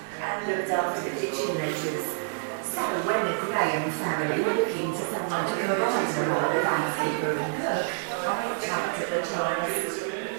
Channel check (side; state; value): left; silent; digital silence